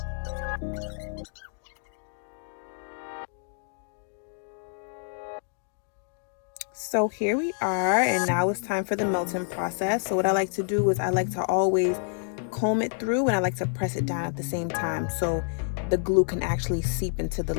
So here we are, and now it's time for the melting process. So what I like to do is I like to always comb it through and I like to press it down at the same time so the glue can actually seep into the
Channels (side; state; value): right; silent; digital silence